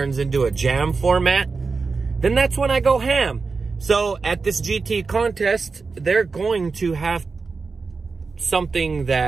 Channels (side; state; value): left; quieter; 4.5 dB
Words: into a jam format, then that's when I go ham. So at this GT contest, they're going to have something